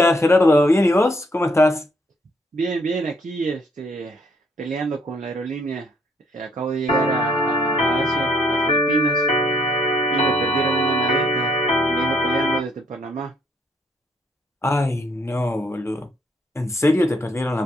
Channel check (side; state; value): both; normal; correlation 0.68